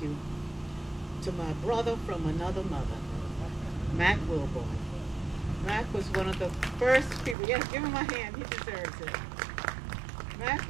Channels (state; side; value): drops out; left; at 7.4 s